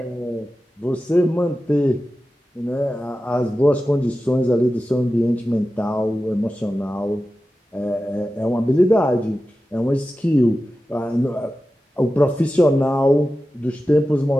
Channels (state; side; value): normal; both; correlation 0.94